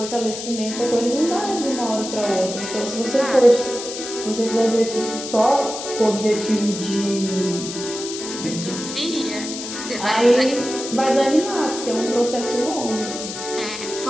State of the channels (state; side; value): noise; left; hiss, 8 dB below the sound